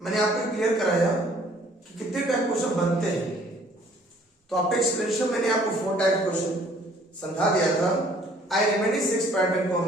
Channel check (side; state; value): both; normal; correlation 0.58